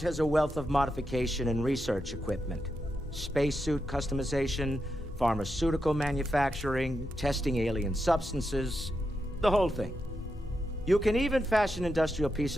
a wealth of modification and research equipment. Spacesuit customization, pharmaceutical manufacturing, testing alien substances, the whole thing. You can even fashion industrial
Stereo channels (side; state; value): both; normal; correlation 0.86